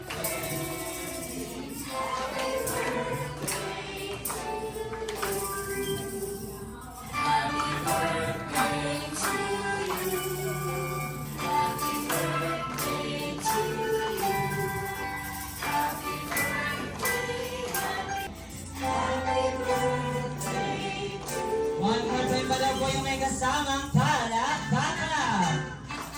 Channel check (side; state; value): both; identical; correlation 1.00